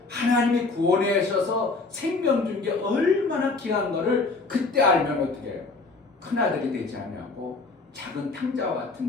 하나님이 구원하셔서 생명 준 게 얼마나 귀한 거를 그때 알면 어떻게 해요? 큰아들이 되지 아니하고 작은 탕자와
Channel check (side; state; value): right; quieter; 3.8 dB